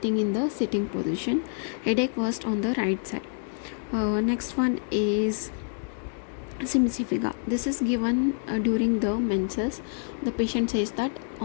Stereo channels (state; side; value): silent; right; digital silence